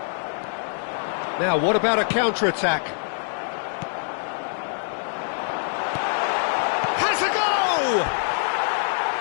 Now, what about a counter-attack? Has a go!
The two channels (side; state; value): right; silent; 60 dB below the other